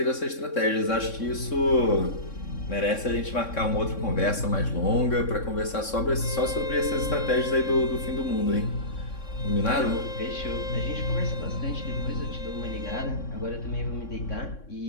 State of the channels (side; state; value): right; late; 3.6 ms